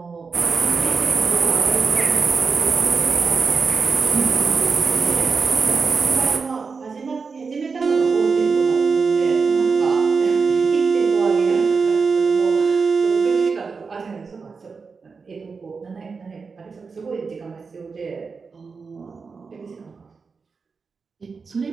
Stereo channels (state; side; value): quieter; left; 4.9 dB